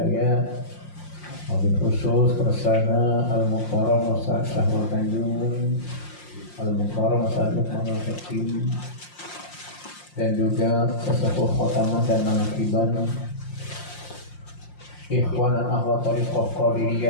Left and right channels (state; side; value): late; right; 5.7 ms